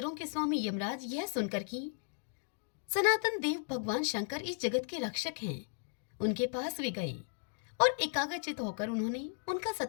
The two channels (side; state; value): right; silent; 54 dB below the other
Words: के स्वामी यमराज यह सुनकर कि सनातन देव भगवान शंकर इस जगत के रक्षक हैं, उनके पास वे गए और एकाग्रचित होकर उन्होंने उनका